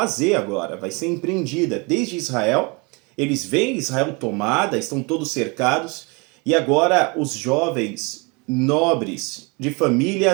agora. Vai ser empreendida desde Israel. Eles veem Israel tomada, estão todos cercados, e agora os jovens nobres, de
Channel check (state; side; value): quieter; left; 29.5 dB